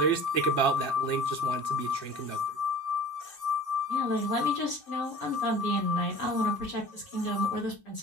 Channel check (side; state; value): right; late; 2.6 ms